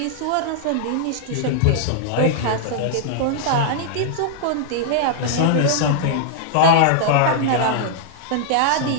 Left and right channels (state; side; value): different; both; correlation -0.01